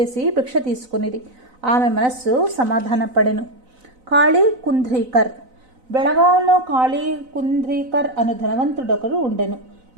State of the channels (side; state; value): left; late; 4.0 ms